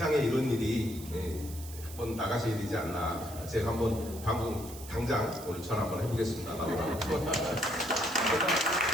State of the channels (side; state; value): right; noise; hiss, 15 dB below the sound